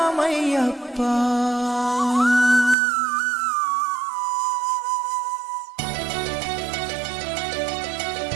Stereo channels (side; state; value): left; drops out; at 2.8 s